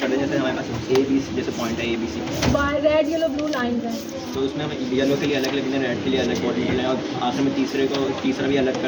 दें, जैसे हमारे पास ए बी सी जैसे पॉइंट है A B C, red yellow blue line है। तो उसमें हम येलो के लिए अलग लिख दें, रेड के लिए अलग बॉडी लें और आखिर में तीसरा भी अलग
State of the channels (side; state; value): both; identical; correlation 1.00